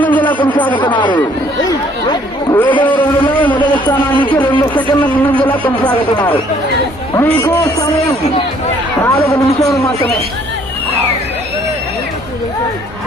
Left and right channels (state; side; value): normal; both; correlation 0.61